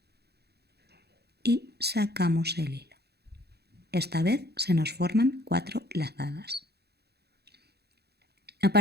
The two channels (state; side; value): late; left; 0.47 ms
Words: y sacamos el hilo. Esta vez se nos forman 4 lazadas. A